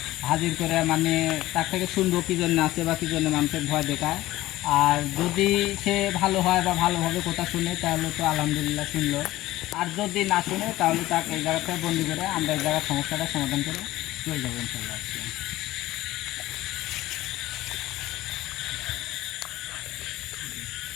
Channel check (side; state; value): right; quieter; 16.6 dB